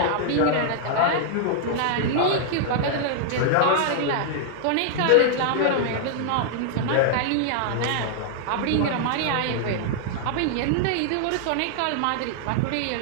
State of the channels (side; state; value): both; different; correlation -0.01